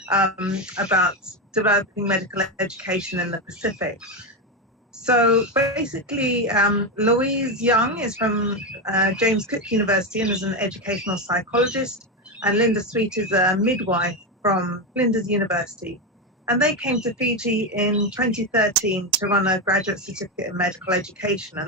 about developing medical education in the Pacific. So basically, Louise Young is from James Cook University and is an educational psychologist, and Linda Sweet is a midwife from Flinders University. And they came to Fiji in 2013 to run a graduate certificate in medical education,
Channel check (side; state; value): both; normal; correlation 0.12